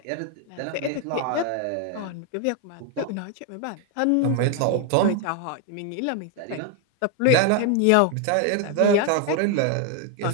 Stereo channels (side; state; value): both; different; correlation 0.01